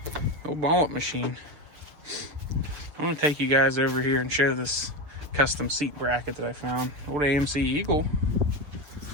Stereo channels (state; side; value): late; left; 6.9 ms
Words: Old wallet machine. I'm gonna take you guys over here and show this custom seat bracket that I found. Old AMC Eagle.